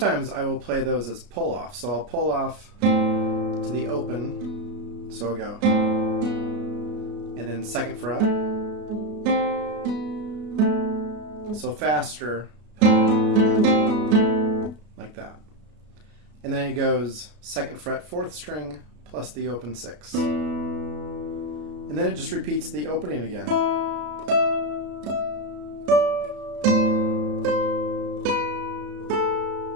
I will play those as pull off. So I'll pull off to the open, so I'll go, and then 2nd fret. So faster, like that. And then it goes 2nd fret 4th string plus the open 6. And then it just repeats the opening again.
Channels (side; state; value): left; late; 33 ms